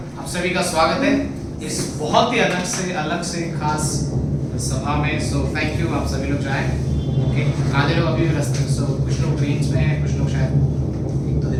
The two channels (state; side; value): identical; both; correlation 1.00